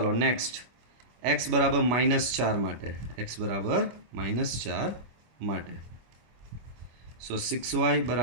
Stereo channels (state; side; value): late; left; 25 ms